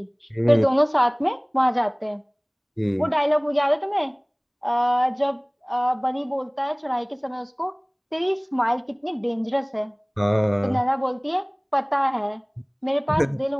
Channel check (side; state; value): both; identical; correlation 1.00